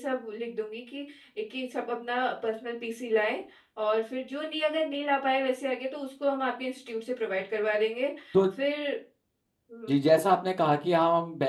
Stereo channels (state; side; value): identical; both; correlation 1.00